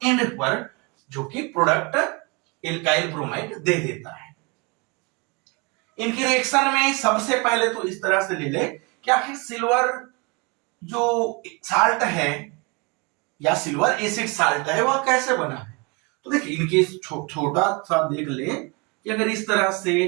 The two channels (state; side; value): quieter; left; 29.7 dB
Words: एंड पर जो कि प्रोडक्ट एल्काइल ब्रोमाइड दे देता है। इनकी रिएक्शन में सबसे पहले तो इस तरह से ले ले कि आखिर सिल्वर जो साल्ट है या सिल्वर एसिड साल्ट है वह कैसे बना है। तो देखिए इनके छोटा सा देख ले कि अगर इस तरह से